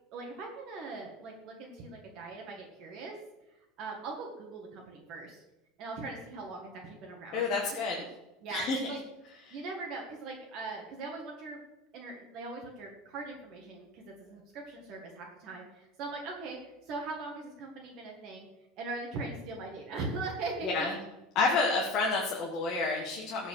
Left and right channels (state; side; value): normal; both; correlation 0.31